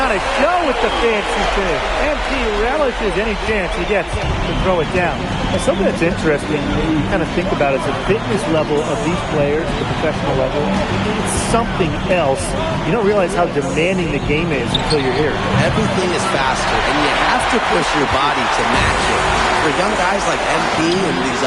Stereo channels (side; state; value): both; identical; correlation 1.00